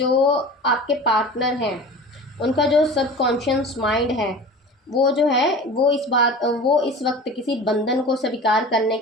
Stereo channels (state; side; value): normal; both; correlation 0.36